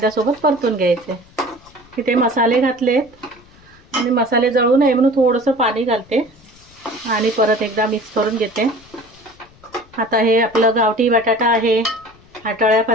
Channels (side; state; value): left; noise; rumble, 27 dB below the sound